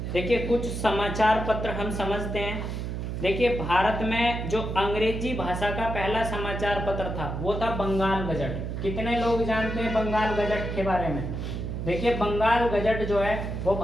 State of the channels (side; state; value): right; noise; hum, 4 dB below the sound